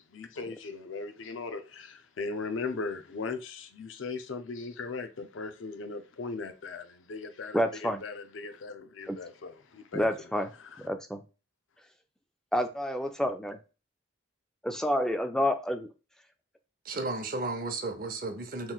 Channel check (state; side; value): normal; both; correlation 0.63